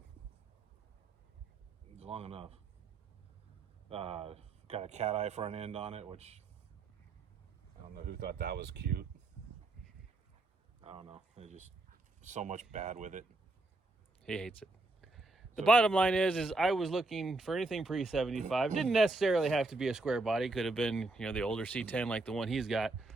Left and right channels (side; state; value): left; quieter; 3.1 dB